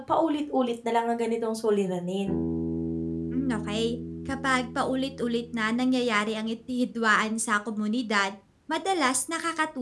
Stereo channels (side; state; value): both; identical; correlation 1.00